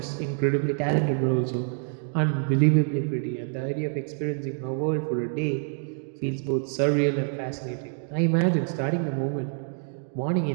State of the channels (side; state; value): left; silent; 58 dB below the other